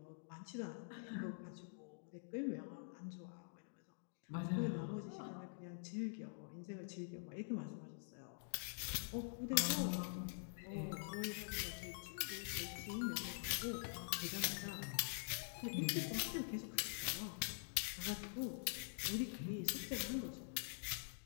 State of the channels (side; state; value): right; silent; digital silence